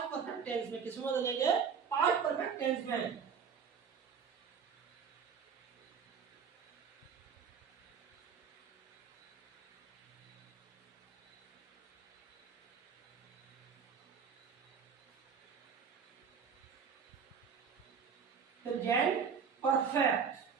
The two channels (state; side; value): quieter; left; 6.5 dB